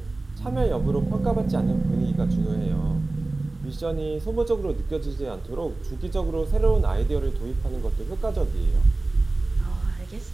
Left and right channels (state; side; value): quieter; left; 3.1 dB